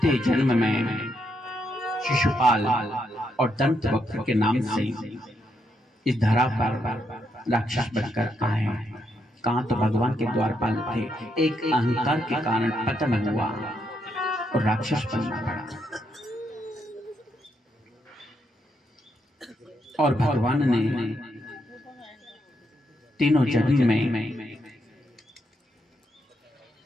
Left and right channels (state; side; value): normal; both; correlation 0.79